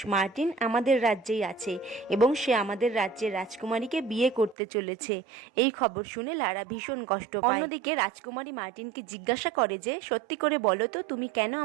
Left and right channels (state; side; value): drops out; left; at 4.5 s